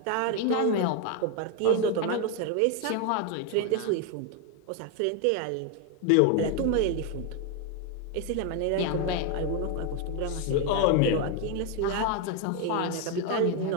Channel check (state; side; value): different; both; correlation 0.01